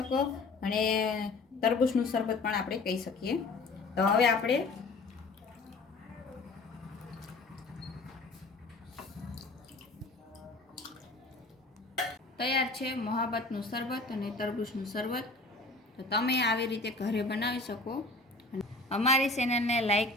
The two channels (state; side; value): quieter; right; 3.4 dB